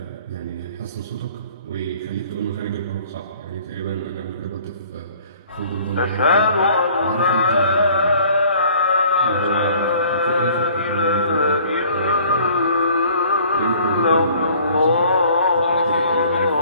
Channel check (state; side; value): inverted; both; correlation -0.53